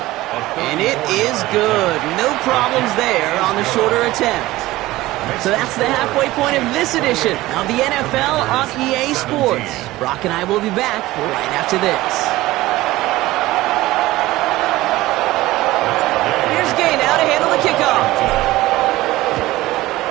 And it is good. No problems there on the shorter attempt. So that's the halfway point of this edition of the NFL on EA Sports. Brock and I will be back right after this. Here's Gay now to handle the kickoff.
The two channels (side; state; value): left; quieter; 17.7 dB